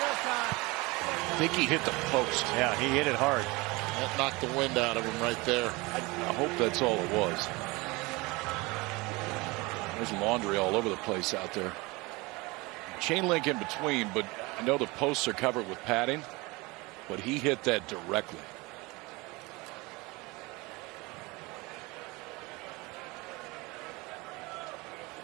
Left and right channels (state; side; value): quieter; left; 24.2 dB